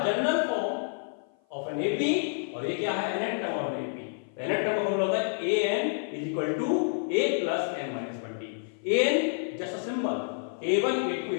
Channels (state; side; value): silent; right; 55 dB below the other